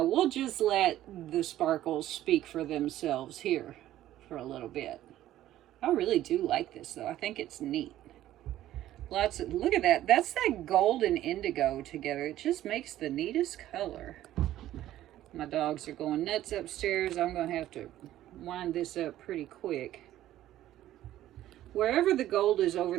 we'll just let the sparkles speak for themselves here for a little bit. I really do like this though. I think it's neat. Lots of, look at that. That's that gold and indigo together. It just makes the neatest color. My dogs are going nuts upstairs. I'm going to have to wind this up pretty quick. Wherever the gold is over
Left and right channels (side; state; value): left; quieter; 13.5 dB